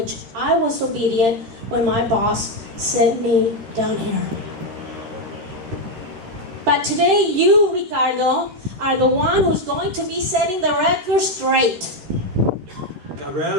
I was obedient when my boss sent me down here. But today you, Ricardo, are the one who's going to be setting the record straight.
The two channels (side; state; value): left; late; 13 ms